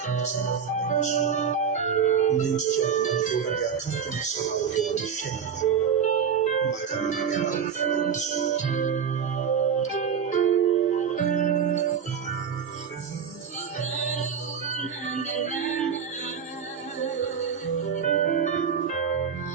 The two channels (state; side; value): quieter; left; 7.1 dB